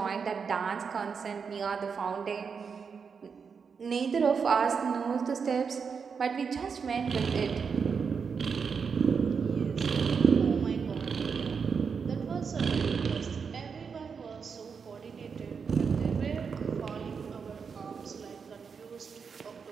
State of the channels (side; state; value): left; quieter; 5.9 dB